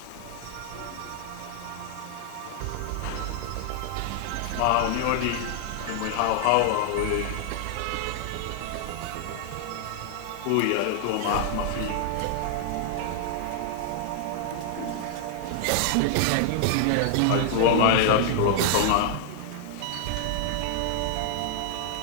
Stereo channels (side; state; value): both; different; correlation 0.00